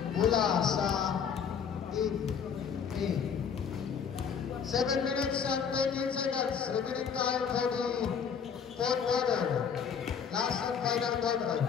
Mula sa Team A. 7 minutes and 13 seconds. Remaining time for the 4th quarter. Last and final quarter.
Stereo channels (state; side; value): quieter; right; 6.9 dB